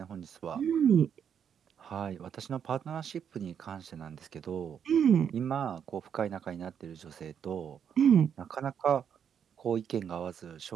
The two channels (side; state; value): left; quieter; 8.1 dB